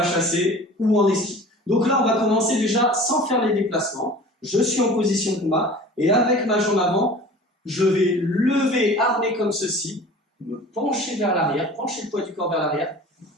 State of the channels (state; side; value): normal; both; correlation 0.42